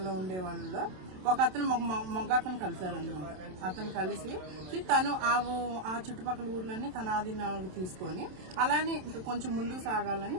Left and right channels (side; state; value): left; late; 27 ms